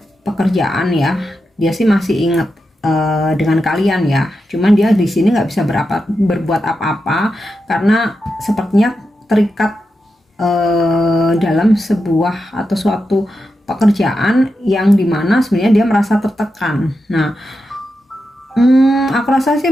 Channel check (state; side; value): normal; both; correlation 0.88